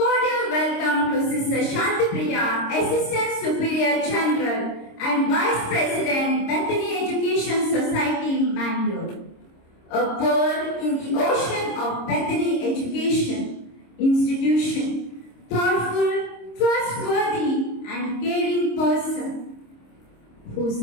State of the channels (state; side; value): late; right; 26 ms